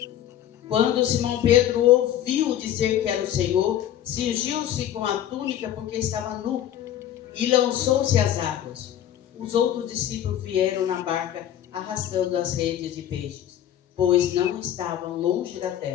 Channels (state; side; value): quieter; right; 11.3 dB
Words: Quando Simão Pedro ouviu dizer que era o Senhor, cingiu-se com a túnica porque estava nu e lançou-se às águas. Os outros discípulos vieram na barca arrastando as redes de peixes, pois não estavam longe da